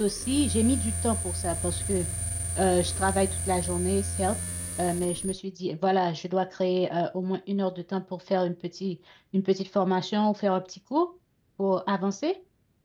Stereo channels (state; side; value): identical; both; correlation 1.00